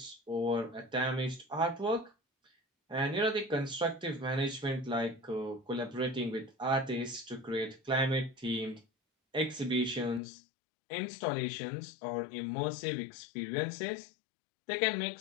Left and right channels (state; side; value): drops out; right; at 10.2 s